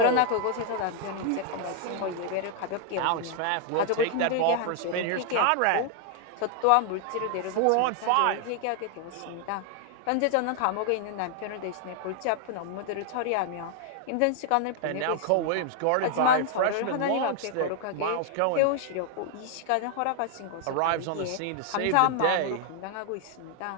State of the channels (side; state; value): both; different; correlation 0.00